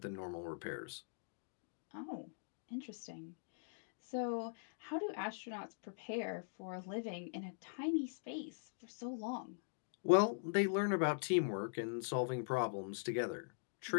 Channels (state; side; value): silent; right; digital silence